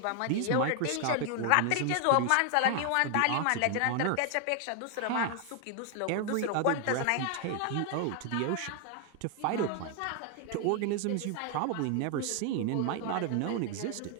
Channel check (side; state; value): both; different; correlation 0.00